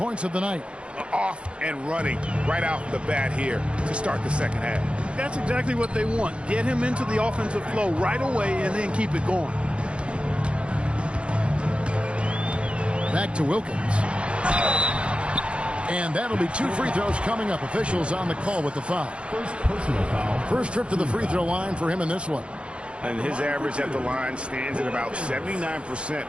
of the night. Off and running right out the bat here to start the second half. That's exactly what they want. Get him into the offensive flow right away and then keep it going. Back to Wilkins. And that'll be 2 free throws coming up. Officials on the call with the foul. First personal foul. First trip to the free throw line for him in this one. And his average at the line stands at about 79%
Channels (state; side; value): late; left; 0.058 ms